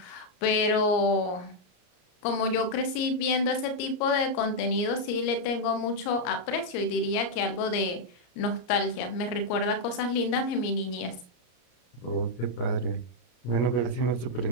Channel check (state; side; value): late; right; 33 ms